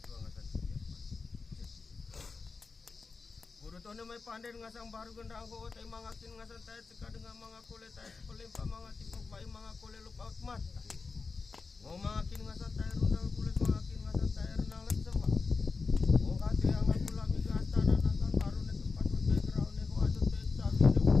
tua ngasan siap guru tone mai panden ngasang baru gendang ko tai mangakin ngasan tai teka dengan mangakole tai pelempa mangati pai mangakole lupa mata mau mangakin ngasan tai rundal kulit mangakin ngasan tai renang lesema mau katri ang aku lami ke astana nagan baru ne tempat background ne ko adu te sabi ne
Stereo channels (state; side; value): quieter; right; 4.4 dB